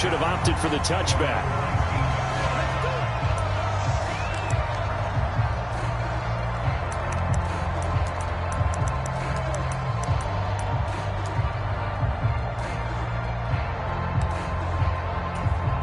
have opted for the touchback.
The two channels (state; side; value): identical; both; correlation 1.00